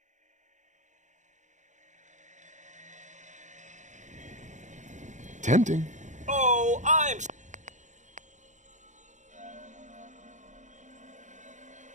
Tempting. Oh, I'm...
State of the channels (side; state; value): left; late; 0.35 ms